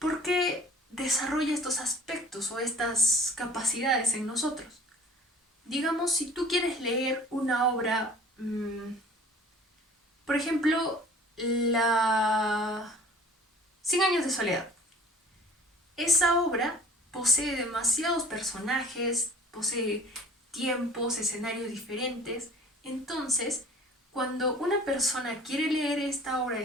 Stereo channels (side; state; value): both; normal; correlation 0.48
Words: ¿Por qué desarrolla estos aspectos o estas capacidades en nosotros? Digamos, si tú quieres leer una obra, por ejemplo, la 100 años de soledad. Esa obra posee demasiados personajes, posee tiempos, escenarios diferentes. Entonces, cuando una persona quiere leer esta obra